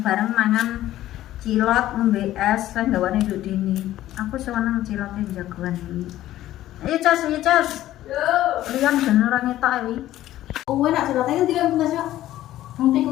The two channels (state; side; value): quieter; right; 14.0 dB